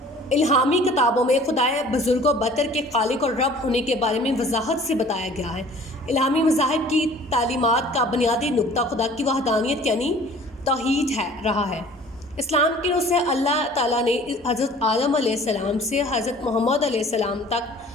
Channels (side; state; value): both; normal; correlation 0.49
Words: इल्हामी किताबों में खुदाए बुज़ुर्ग व बतर के खालिक और रब होने के बारे में वजाहत से बताया गया है। इल्हामी मज़ाहिब की तालीमात का बुनियादी नुक्ता खुदा की वहदानियत यानी तौहीद रहा है। इस्लाम की रूह से अल्लाह ताला ने हज़रत आदम अलैहिस्सलाम से हज़रत मोहम्मद अलैहिस्सलाम तक